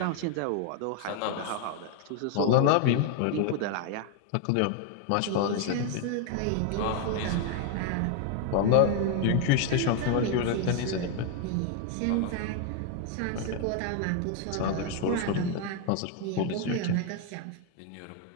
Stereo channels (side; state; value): both; different; correlation 0.01